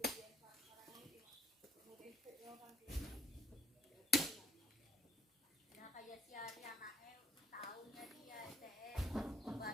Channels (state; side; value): normal; both; correlation 0.57